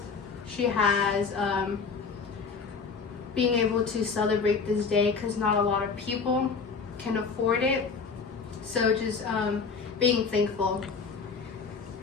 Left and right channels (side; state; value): right; quieter; 5.2 dB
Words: she has, being able to celebrate this day because not a lot of people can afford it. So just being thankful.